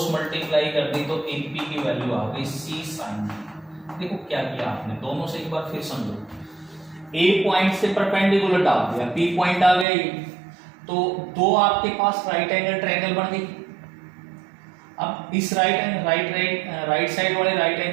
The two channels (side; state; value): left; drops out; at 9.9 s